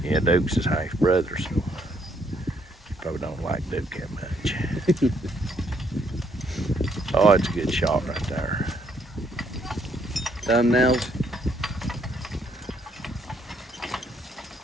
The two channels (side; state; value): both; normal; correlation 0.71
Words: Yeah, Duke's his half brother, so he probably don't like Duke that much. Oh, it's a good shot right there. Thumbnails.